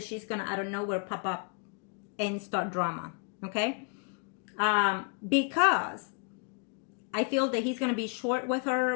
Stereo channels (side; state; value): right; quieter; 37.8 dB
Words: she's gonna out of nowhere pop up and start drama. Okay, because I feel that he's gonna be short with her